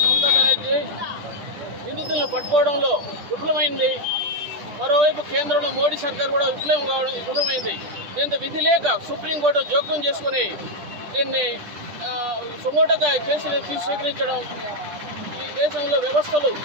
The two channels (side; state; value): left; late; 10 ms